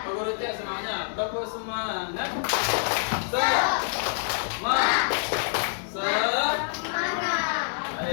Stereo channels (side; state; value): right; silent; 60 dB below the other